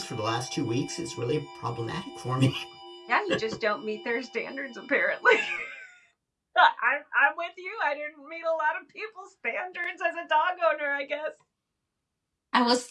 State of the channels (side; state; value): both; identical; correlation 1.00